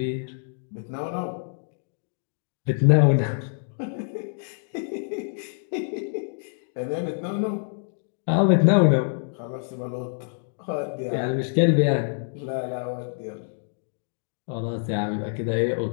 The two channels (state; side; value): silent; right; digital silence